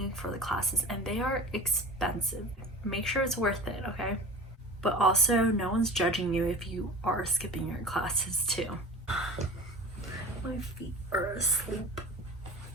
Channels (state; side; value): normal; both; correlation 0.37